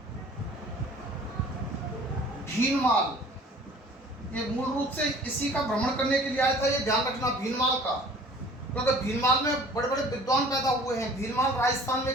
भीनमाल। ये मूल रूप से इसी का भ्रमण करने के लिए आया था, ये ध्यान रखना भीनमाल का, क्योंकि भीनमाल में बड़े बड़े विद्वान पैदा हुए हैं। भीनमाल राजस्थान में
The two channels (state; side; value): normal; both; correlation 0.48